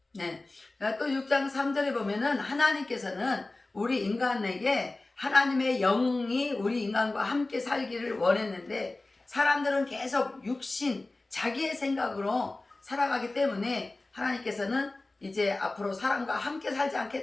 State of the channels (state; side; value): quieter; right; 3.1 dB